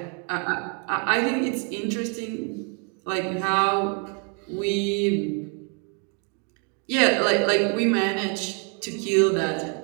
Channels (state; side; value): quieter; left; 39.0 dB